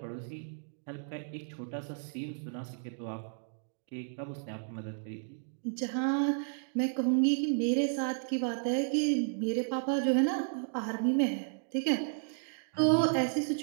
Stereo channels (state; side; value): silent; left; digital silence